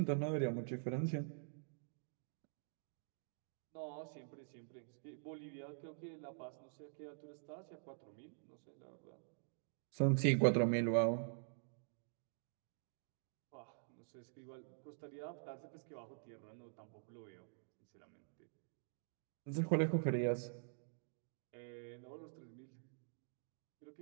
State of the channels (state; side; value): silent; left; digital silence